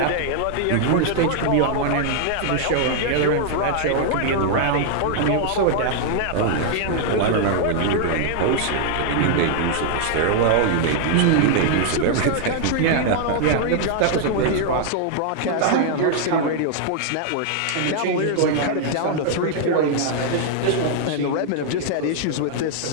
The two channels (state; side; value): different; both; correlation -0.01